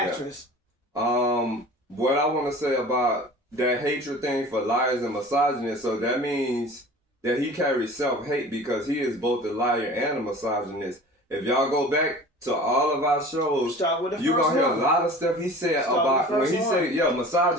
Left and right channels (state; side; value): normal; both; correlation 0.41